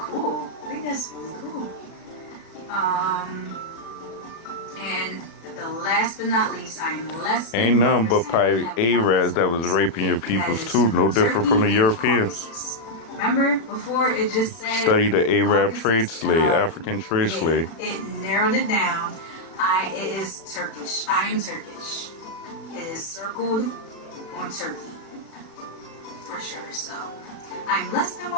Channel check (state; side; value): late; right; 36 ms